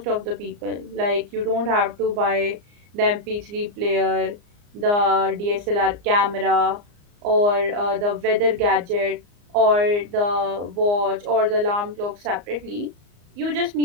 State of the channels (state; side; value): late; left; 34 ms